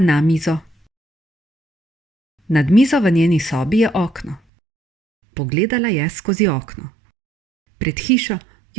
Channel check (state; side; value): drops out; left; at 4.4 s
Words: mizo. Nad mizo v njeni sobi je okno. Pogledala je skozi okno. Pred hišo